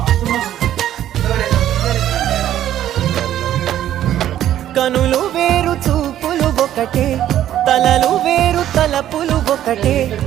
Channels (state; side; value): quieter; left; 11.8 dB